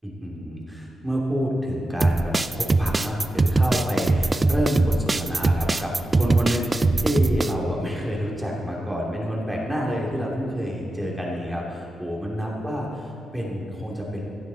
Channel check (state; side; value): normal; both; correlation 0.92